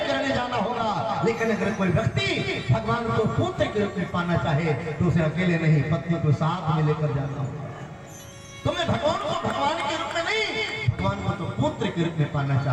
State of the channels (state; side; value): identical; both; correlation 1.00